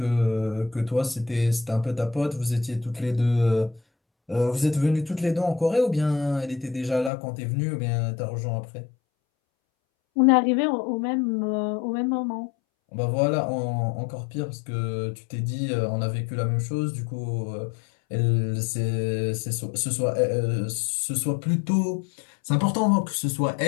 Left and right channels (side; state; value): right; drops out; at 7.1 s